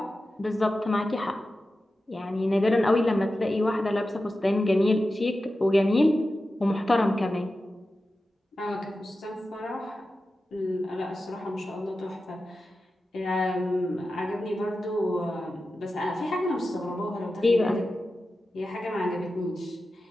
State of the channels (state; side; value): normal; both; correlation 0.93